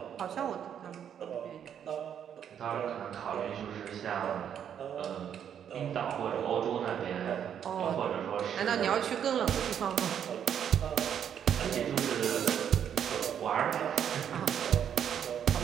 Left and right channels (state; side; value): quieter; left; 8.9 dB